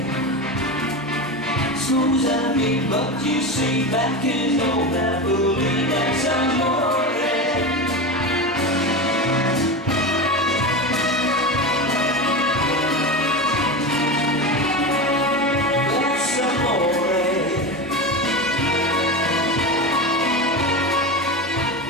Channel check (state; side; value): normal; both; correlation 0.22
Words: Smooth and mean, but you see back in old Napoli, that's amore.